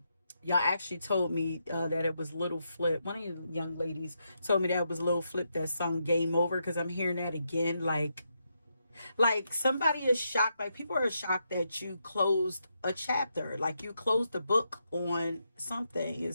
actually told me that it was Little Flip. One of you young ladies told me that it was Little Flip that sung Game Over because I'm hearing that again. Like somebody is shocked. Like people are shocked that you closed a chapter. Like you closed the book on something.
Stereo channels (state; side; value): inverted; both; correlation -0.82